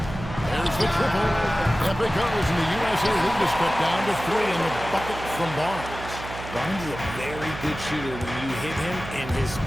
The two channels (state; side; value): noise; right; hum, 11 dB below the sound